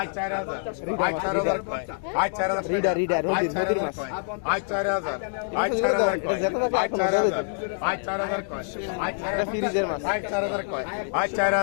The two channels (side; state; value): right; silent; digital silence